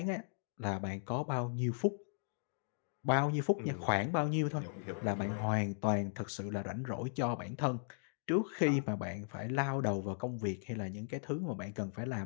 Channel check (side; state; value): right; silent; digital silence